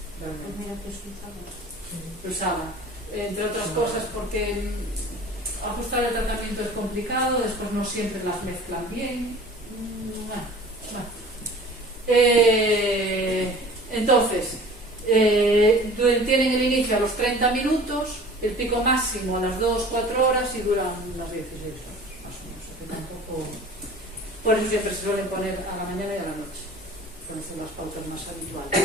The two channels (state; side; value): normal; both; correlation 0.44